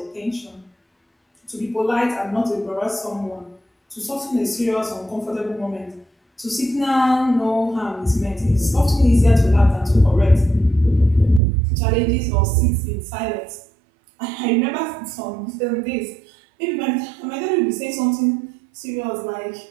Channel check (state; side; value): drops out; left; at 11.4 s